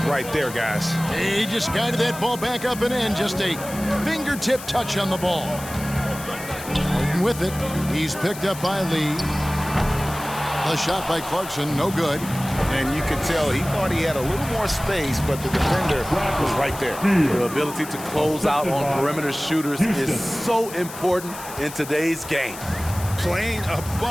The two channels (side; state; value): left; noise; hiss, 13 dB below the sound